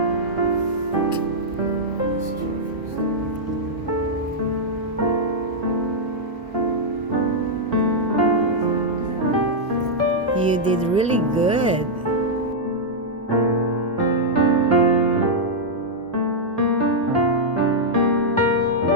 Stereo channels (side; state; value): both; normal; correlation -0.05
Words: You did really good.